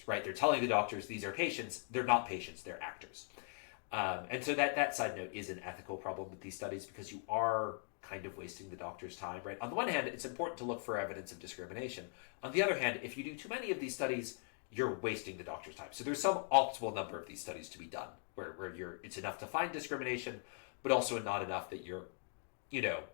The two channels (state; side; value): silent; right; 51 dB below the other